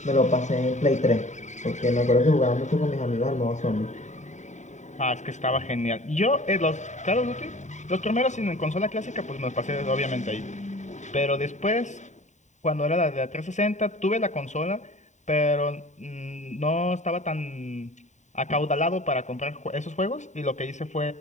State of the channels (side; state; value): right; late; 0.34 ms